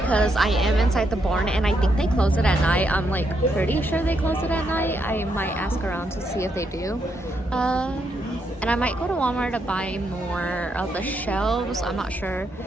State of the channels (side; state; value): both; normal; correlation 0.78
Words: I am inside the barn and I think they close it at night. I'm like pretty sure they close it at night. I might ask around to see if they do. And I might go to Walmart to buy more of the shelves. I'm not sure.